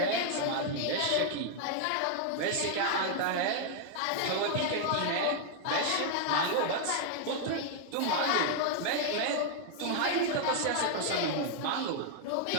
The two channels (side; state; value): both; different; correlation 0.00